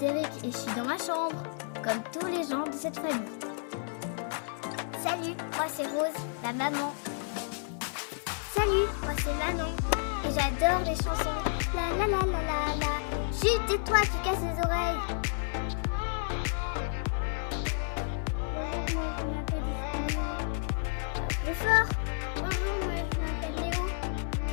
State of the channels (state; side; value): silent; right; digital silence